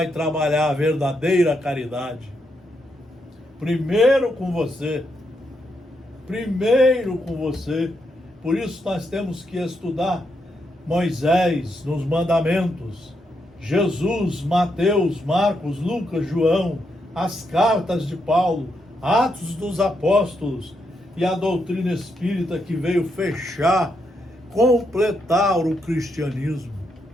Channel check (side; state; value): both; normal; correlation 0.81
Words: trabalhar a verdadeira caridade. Primeiro com você. Primeiro com você. Por isso nós temos que estudar Moisés nos mandamentos, Jesus, Mateus, Marcos, Lucas, João, as cartas de Paulo, Atos dos Apóstolos e a doutrina espírita que veio fechar, completar o cristianismo.